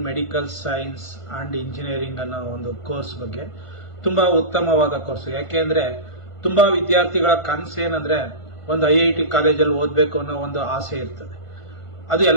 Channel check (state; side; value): late; right; 1.5 ms